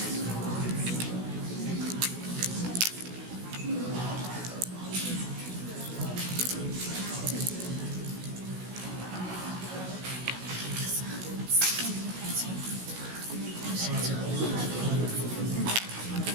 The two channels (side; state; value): left; late; 16 ms